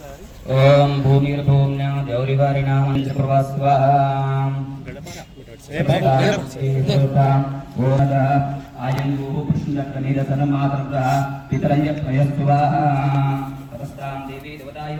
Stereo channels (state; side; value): identical; both; correlation 1.00